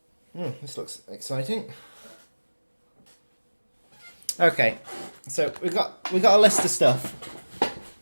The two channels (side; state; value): both; inverted; correlation -1.00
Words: This looks exciting. Okay, so we got a list of stuff